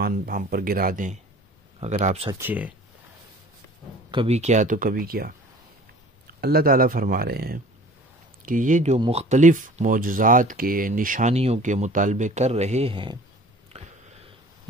ہم پر گرا دیں اگر آپ سچے ہیں، کبھی کیا تو کبھی کیا۔ اللہ تعالیٰ فرما رہے ہیں کہ یہ جو مختلف معجزات کے، نشانیوں کے مطالبے کر رہے ہیں،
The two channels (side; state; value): both; normal; correlation 0.47